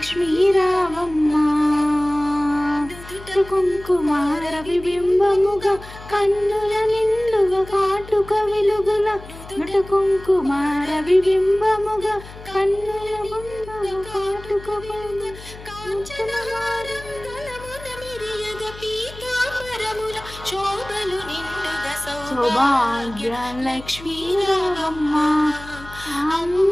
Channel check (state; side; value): noise; left; hum, 16 dB below the sound